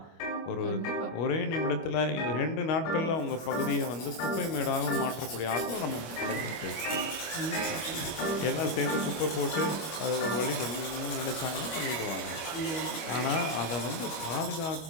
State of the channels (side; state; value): right; late; 25 ms